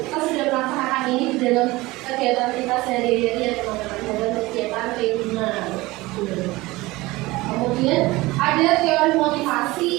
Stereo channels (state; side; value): quieter; left; 20.5 dB